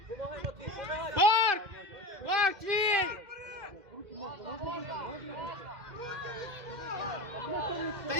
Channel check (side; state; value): left; late; 2.1 ms